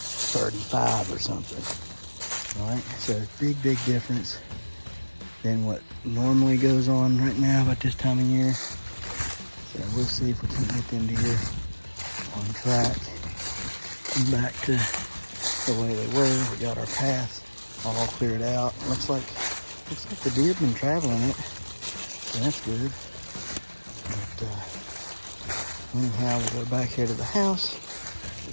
or something. All right, so big difference than what normally goes on right now at this time of year. So we'll see if we can get them deer on track and back to the way they were. We got our path all cleared out. Looks like the deer have been traveling it, so that's good. But anyhow, we'll go back here to the house.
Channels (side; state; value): both; inverted; correlation -1.00